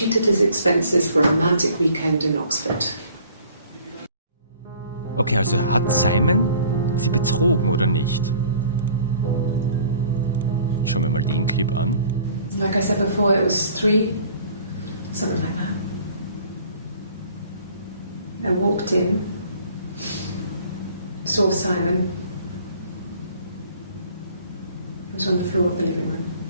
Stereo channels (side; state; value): both; inverted; correlation -0.53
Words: his expenses for a romantic weekend in Oxford. Okay, also hat Simon sie betrogen oder nicht? Schauen wir mal den Clip an. Like I said before, it was 3, something like that. I walked in, saw Simon. He was on the floor of the living room.